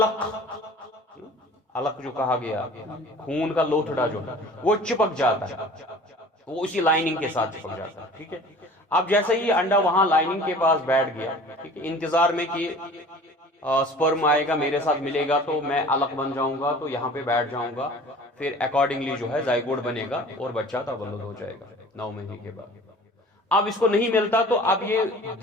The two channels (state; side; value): normal; both; correlation 0.45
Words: علق جو کہا گیا، خون کا لوتھڑا جو ہے وہ چپک جاتا ہے، وہ اسی لائننگ کے ساتھ چپک جاتا ہے. ٹھیک ہے، اب جیسے ہی انڈا وہاں لائننگ کے پاس بیٹھ گیا، ٹھیک ہے، انتظار میں کہ سپرم آئے گا، میرے ساتھ ملے گا تو میں علق بن جاؤں گا، تو یہاں پہ بیٹھ جاؤں گا، پھر اکارڈنگلی جو ہے زائگوٹ بنے گا اور بچہ تولد ہو جائے گا 9 مہینے کے بعد. اب اس کو نہیں ملتا تو اب یہ